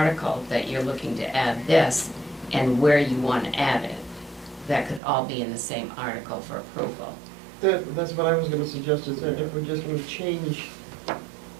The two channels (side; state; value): left; drops out; at 5.0 s